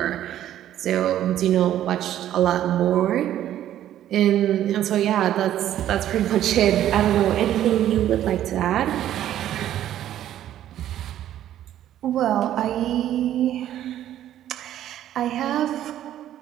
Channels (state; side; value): quieter; left; 11.9 dB